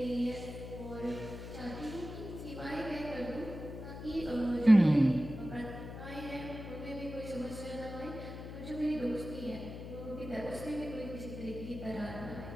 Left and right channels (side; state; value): left; noise; hum, 10 dB below the sound